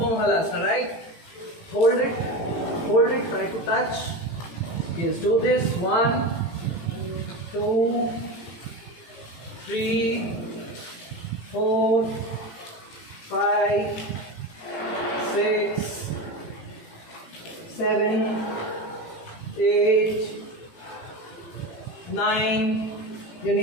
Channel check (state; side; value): late; right; 18 ms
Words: halasana, right? Hold it, try to touch. Yes, do this. 1, 2, 3, 4, 5, 6, 7, 8, 9. Your